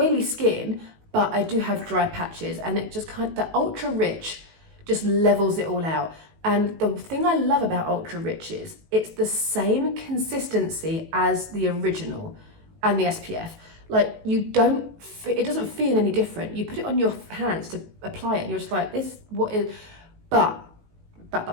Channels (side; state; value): left; late; 19 ms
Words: skin, but I do have dry patches, and it just the Ultra Rich just levels it all out. And the thing I love about Ultra Rich is it's the same consistency as the original and the SPF. Like it doesn't feel any different. You put it on your hands to apply it and you're just like, but